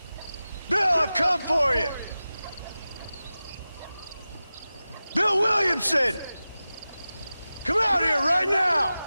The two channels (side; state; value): both; inverted; correlation -0.95